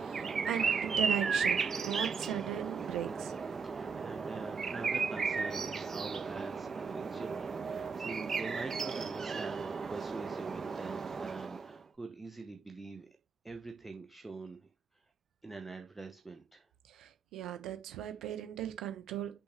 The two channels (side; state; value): left; quieter; 5.5 dB